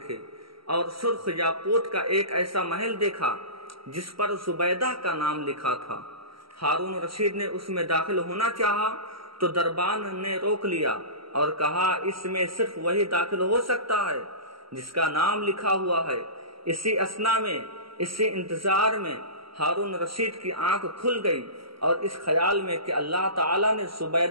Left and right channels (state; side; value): late; left; 0.75 ms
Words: اور سرخ یاقوت کا ایک ایسا محل دیکھا جس پر زبیدہ کا نام لکھا تھا۔ ہارون رشید نے اس میں داخل ہونا چاہا تو دربان نے روک لیا اور کہا، اس میں صرف وہی داخل ہو سکتا ہے جس کا نام لکھا ہوا ہے۔ اسی اثنا میں، اسی انتظار میں ہارون رشید کی آنکھ کھل گئی اور اس خیال میں کہ اللہ تعالیٰ نے